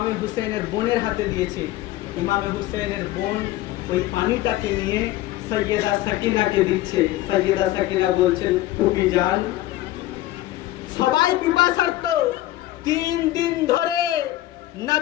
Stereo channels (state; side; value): quieter; right; 15.7 dB